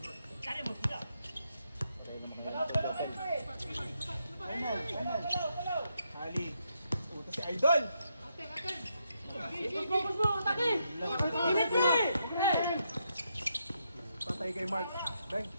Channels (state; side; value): inverted; both; correlation -0.80